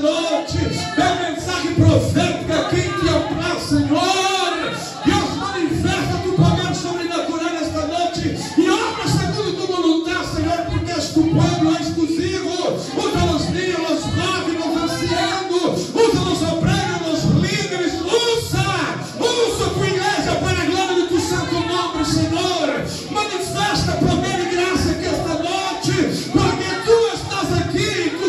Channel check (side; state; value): both; identical; correlation 1.00